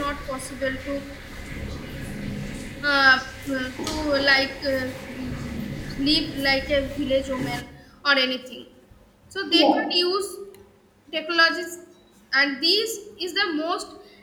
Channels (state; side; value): identical; both; correlation 1.00